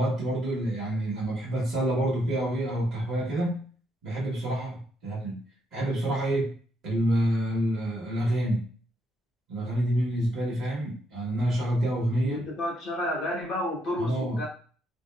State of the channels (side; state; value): both; normal; correlation 0.77